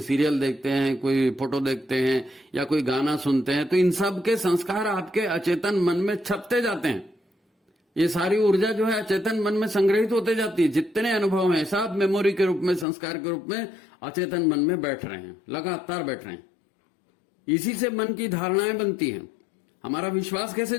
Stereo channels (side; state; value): right; drops out; at 12.9 s